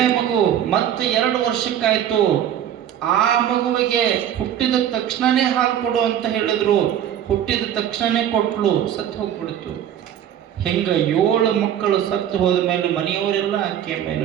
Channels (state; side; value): quieter; left; 10.3 dB